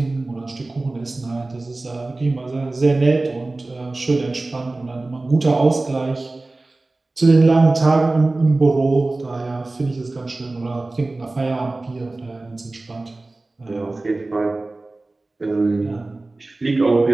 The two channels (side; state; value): left; quieter; 3.1 dB